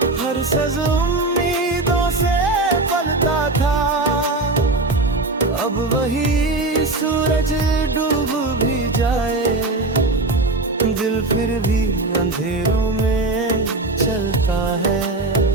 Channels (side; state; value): left; quieter; 3.0 dB